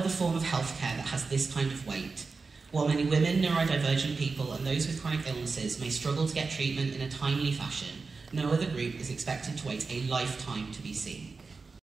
form of healthcare that has this kind of wait. While many women, neurodivergent people and those with chronic illnesses may struggle to get treatment in a timely fashion, no other group is expected to wait a lifetime to be seen.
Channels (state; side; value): quieter; left; 4.4 dB